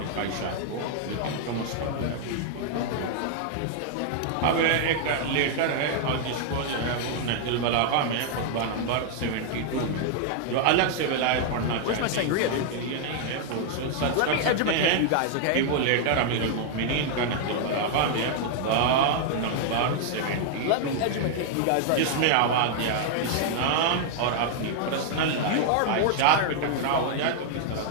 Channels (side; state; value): both; different; correlation 0.00